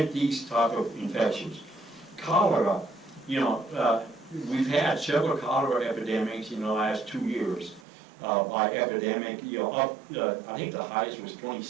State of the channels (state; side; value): drops out; left; at 7.8 s